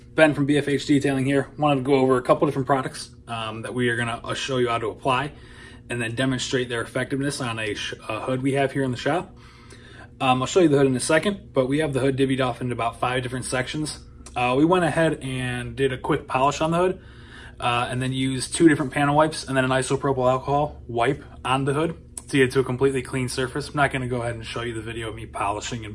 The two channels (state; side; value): identical; both; correlation 1.00